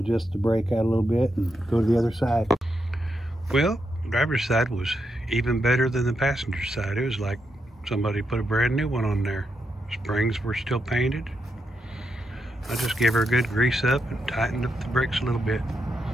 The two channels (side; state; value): both; normal; correlation 0.83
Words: the brake out a little bit and go to the other side. Well, driver's side was even better than the passenger side. It was like somebody put a brand new one on there. Springs were still painted. I just gave her a good grease up and tightened up the brakes a little bit.